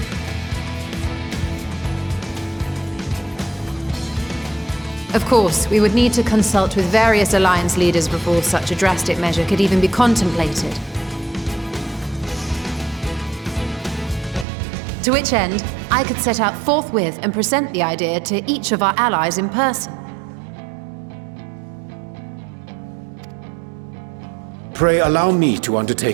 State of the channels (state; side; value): drops out; left; at 14.5 s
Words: Of course, we would need to consult with various Alliance leaders before such a drastic measure could even be contemplated. To which end, I could set out forthwith and present the idea to each of our allies in person. Pray allow me to